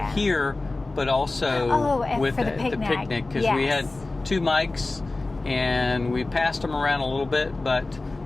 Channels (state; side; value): quieter; right; 3.2 dB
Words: Here, but also with the picnic, because we had 2 mics and we passed them around a little bit, but